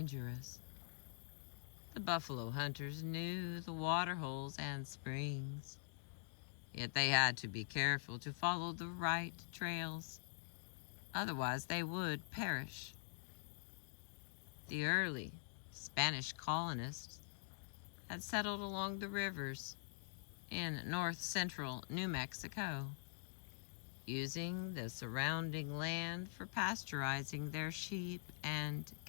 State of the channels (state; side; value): silent; right; digital silence